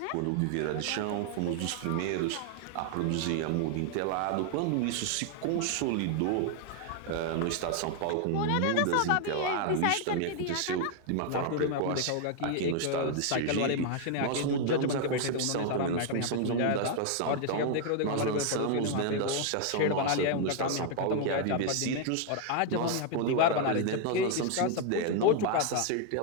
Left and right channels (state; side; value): different; both; correlation 0.00